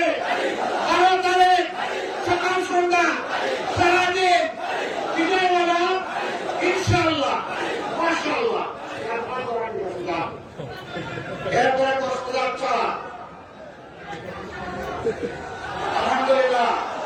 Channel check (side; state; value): both; identical; correlation 1.00